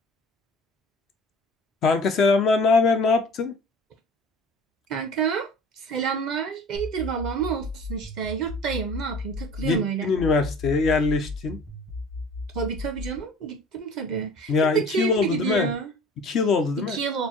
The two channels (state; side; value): normal; both; correlation 0.46